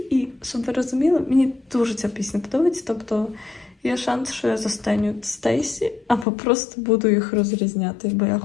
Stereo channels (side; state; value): right; drops out; at 6.2 s